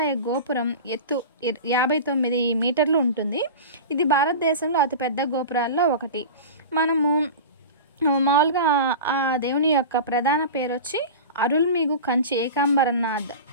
గోపురం ఎత్తు 59 మీటర్లు ఉంటుంది. ఇది భారతదేశంలో అతిపెద్ద గోపురాల్లో ఒకటి. మనము మామూలుగా ఆ దేవుని యొక్క ప్రధాన పేరు వచ్చి అరుల్మిగు కంచి ఏకాంబరనాథ్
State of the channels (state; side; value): inverted; both; correlation -0.30